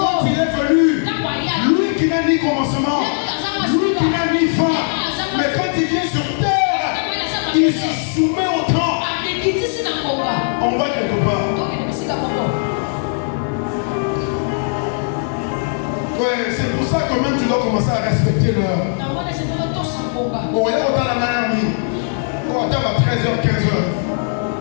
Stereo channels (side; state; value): right; silent; digital silence